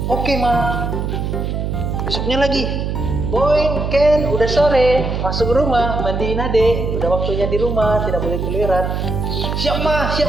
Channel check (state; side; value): noise; right; hum, 2 dB below the sound